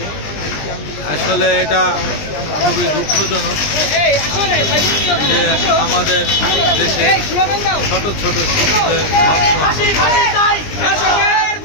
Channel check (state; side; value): late; right; 20 ms